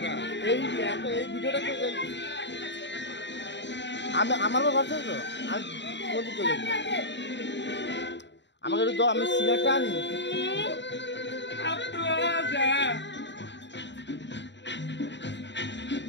এই ভিডিওটা আমি আমার ভরসা তো আমি কোন চলে আমাকে একটু দাও আমি সিগারেটটা আনি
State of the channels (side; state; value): right; late; 0.52 ms